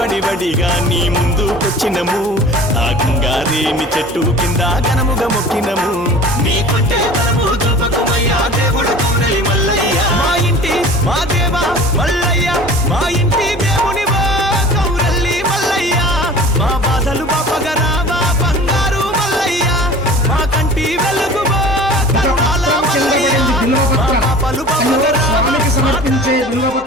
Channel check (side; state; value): both; normal; correlation 0.42